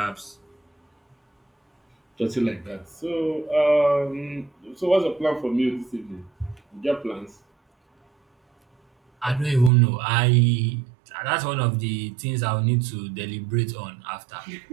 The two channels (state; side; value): drops out; left; at 9.7 s